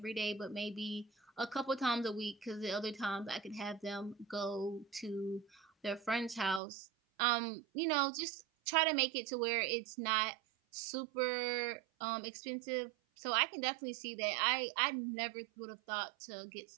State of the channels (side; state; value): left; drops out; at 6.6 s